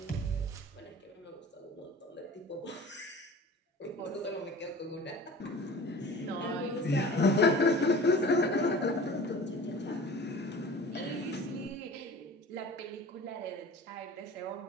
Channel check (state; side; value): normal; both; correlation 0.41